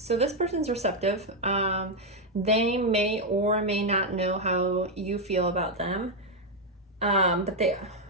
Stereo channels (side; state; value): both; normal; correlation 0.02